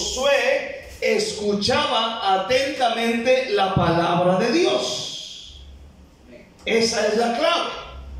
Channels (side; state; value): both; identical; correlation 1.00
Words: escuchaba atentamente la palabra de Dios. Esa es la clave.